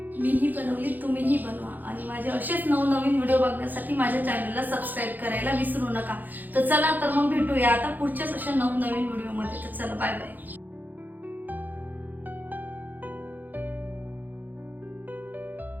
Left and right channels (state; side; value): late; left; 0.085 ms